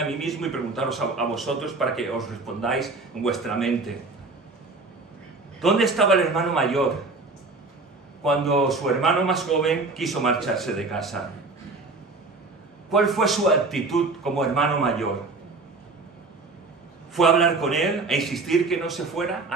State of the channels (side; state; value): left; quieter; 3.6 dB